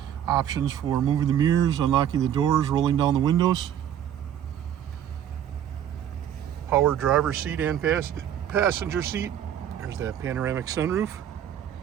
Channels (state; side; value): quieter; left; 10.1 dB